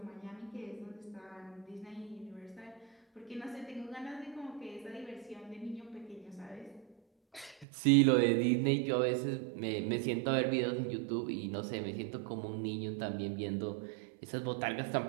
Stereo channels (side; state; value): left; drops out; at 7.7 s